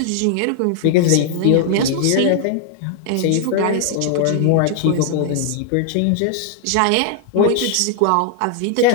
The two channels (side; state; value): both; different; correlation 0.00